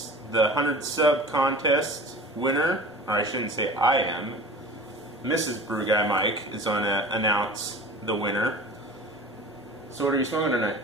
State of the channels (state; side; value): normal; both; correlation 0.38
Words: the 100 sub contest winner. Or I shouldn't say I am. Mrs. BrewGuyMike is going to announce the winner. So what are you smoking tonight?